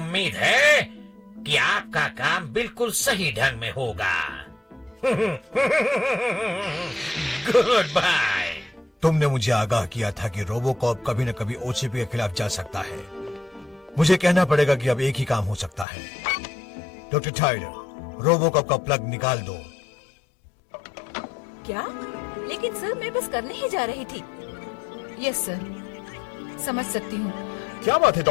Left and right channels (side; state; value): right; drops out; at 15.9 s